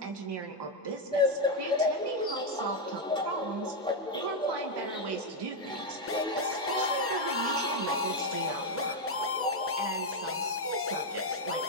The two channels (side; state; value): both; normal; correlation 0.02